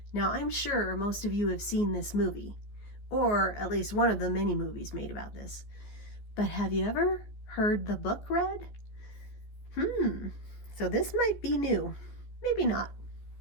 Now, I'm sure most of you have seen this movie, or at least one of the many movies made about this. But have you ever heard the book read? So this might be new. Maybe not,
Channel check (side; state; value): right; late; 14 ms